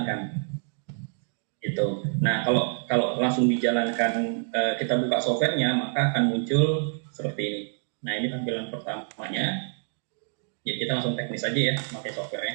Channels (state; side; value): silent; left; 58 dB below the other